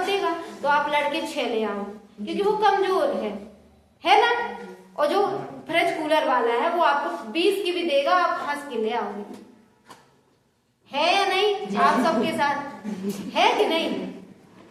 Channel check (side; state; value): both; identical; correlation 1.00